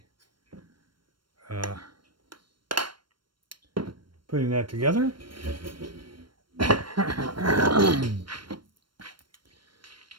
putting that together.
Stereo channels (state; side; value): late; left; 0.72 ms